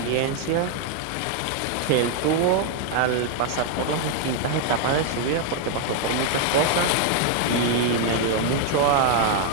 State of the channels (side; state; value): both; different; correlation 0.00